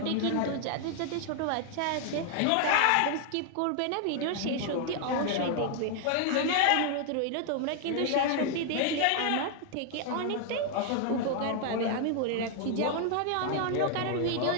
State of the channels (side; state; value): both; different; correlation 0.00